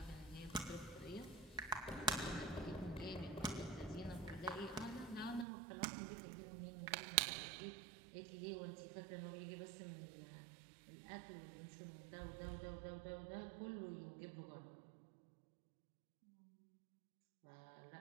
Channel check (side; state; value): left; drops out; at 5.5 s